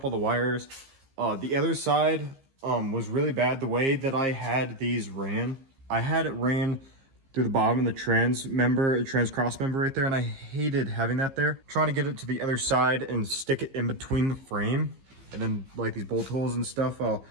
all the wires. The other side was really bad. The way that I had these ran, I had it ran through the bottom of the trans cross member right there, and I hated having that there. Trying to get it to the other side and stick it in between the frame, and then like these bolt holes and stuff, I'll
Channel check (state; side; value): late; left; 15 ms